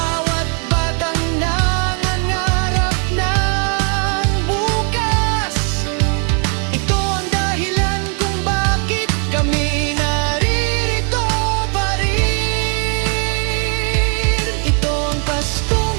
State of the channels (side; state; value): left; quieter; 39.1 dB